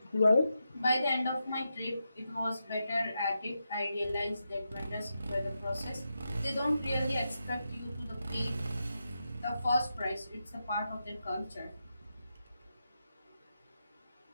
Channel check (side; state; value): both; inverted; correlation -0.87